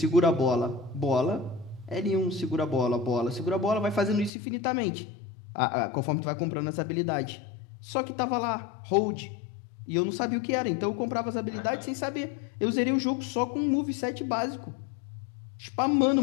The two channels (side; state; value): right; drops out; at 4.3 s